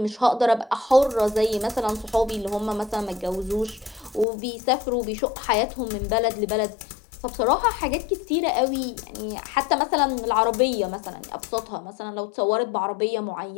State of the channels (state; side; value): drops out; right; at 4.2 s